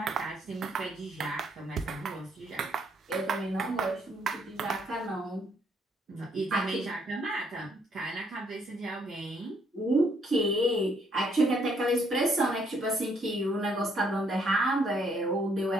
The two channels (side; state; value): both; normal; correlation 0.69